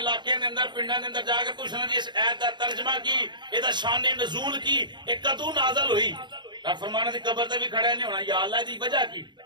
دے اندر پنڈاں دے اندر جا کے پوچھنا جی اس آیت دا ترجمہ کی اے دا شان نزول کی اے کدوں نازل ہوئی. فرمانے دی قبر تے بھی کھڑا نہیں ہونا. یا اللہ دی وجہ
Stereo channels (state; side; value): late; left; 0.22 ms